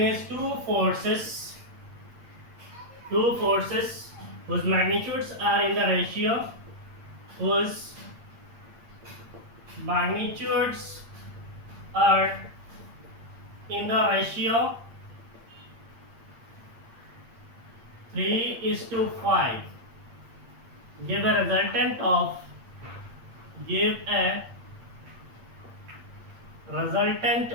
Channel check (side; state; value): left; late; 8.7 ms